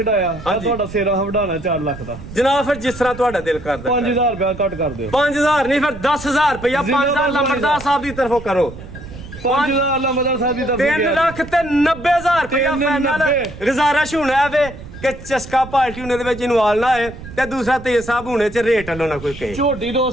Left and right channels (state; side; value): noise; right; rumble, 14 dB below the sound